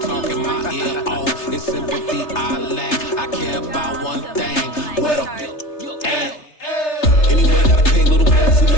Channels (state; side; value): late; right; 3.3 ms